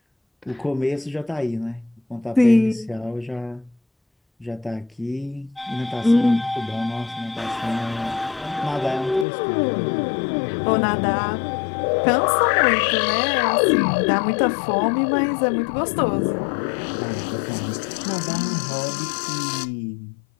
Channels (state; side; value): drops out; right; at 9.2 s